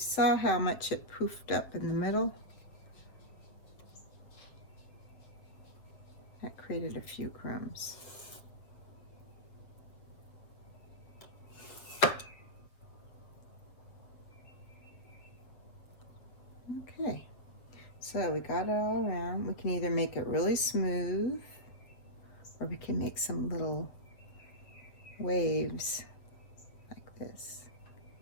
how much it poofed up in the middle, that created a few crumbs. Okay, so we got it all around. We can either make it really smooth or we can make some little waves like this,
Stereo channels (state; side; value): late; right; 7.6 ms